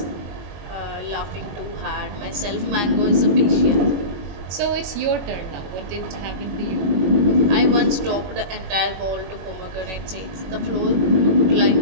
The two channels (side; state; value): left; late; 21 ms